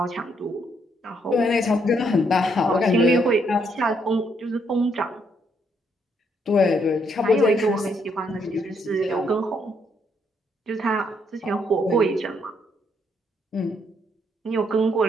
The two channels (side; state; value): both; normal; correlation 0.73